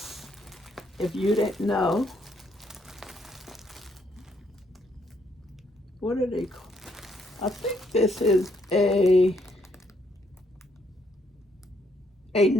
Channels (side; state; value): both; normal; correlation 0.72